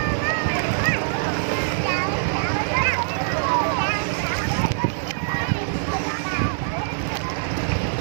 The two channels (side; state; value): left; silent; digital silence